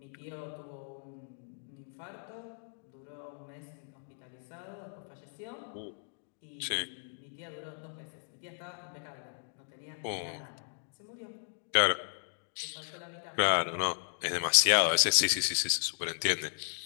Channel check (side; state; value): right; silent; digital silence